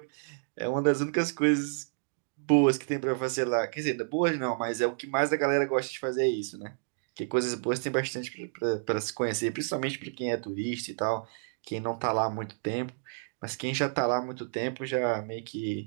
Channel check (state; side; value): silent; left; digital silence